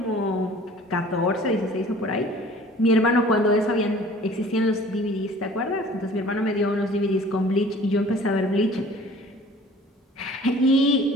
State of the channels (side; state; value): both; normal; correlation 0.49